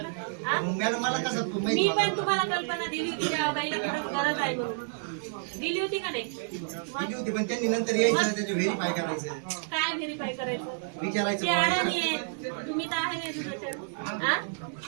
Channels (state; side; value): silent; left; digital silence